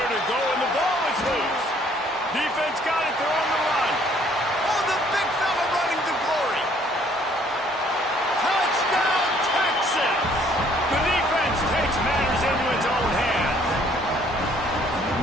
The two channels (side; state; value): both; normal; correlation 0.61